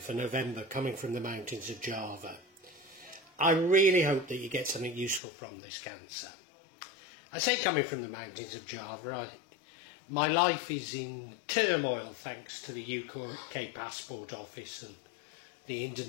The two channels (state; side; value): drops out; right; at 5.2 s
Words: November coming from the mountains of Java. I really hope that you get something useful from this, Cancer. I say coming from the mountains of Java, my life is in turmoil thanks to the UK Passport Office and the